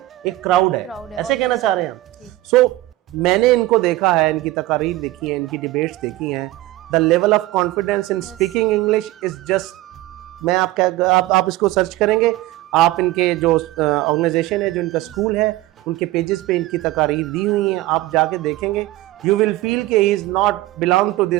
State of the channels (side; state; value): left; quieter; 17.5 dB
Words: ایک کراؤڈ ہے, ایسے کہنا چاہ رہے ہیں ہم. سو میں نے ان کو دیکھا ہے, ان کی تقاریر دیکھی ہیں, ان کی ڈیبیٹس دیکھی ہیں. The level of confidence in speaking English is just, میں آپ اس کو سرچ کریں گے, آپ ان کے جو آرگنائزیشن ہے, جو ان کا اسکول ہے, ان کے پیجز پہ ان کی تقاریر دی ہوئی ہیں, آپ جا کے دیکھیں گے. یو ول فیل کہ he is not belong to